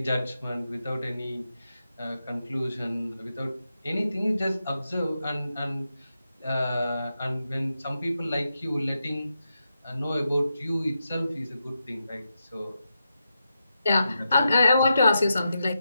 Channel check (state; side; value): inverted; both; correlation -0.87